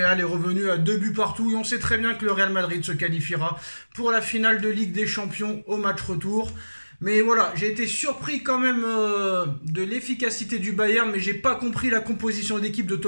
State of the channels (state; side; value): inverted; both; correlation -1.00